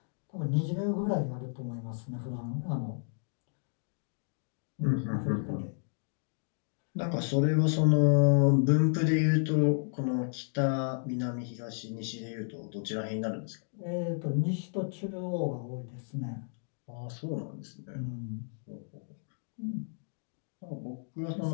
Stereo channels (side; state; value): right; silent; digital silence